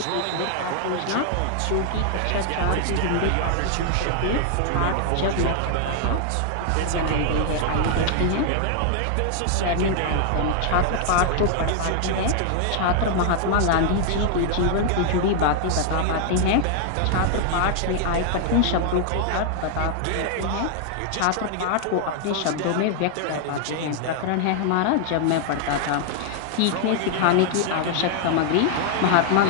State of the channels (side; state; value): both; different; correlation 0.00